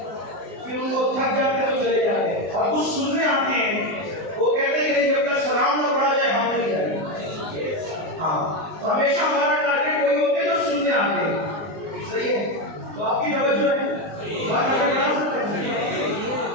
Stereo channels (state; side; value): late; left; 19 ms